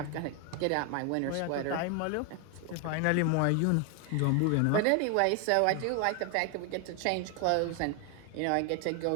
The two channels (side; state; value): both; different; correlation 0.01